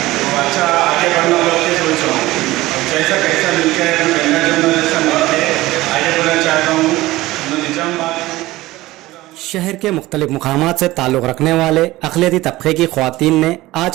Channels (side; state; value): left; quieter; 18.0 dB